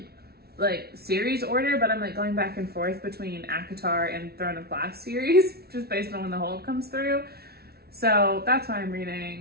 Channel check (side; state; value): left; late; 0.45 ms